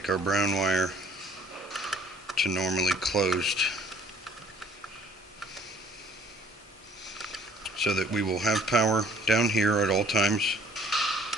our brown wire to normally closed, so that we will have power down here at all times,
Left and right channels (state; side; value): normal; both; correlation 0.57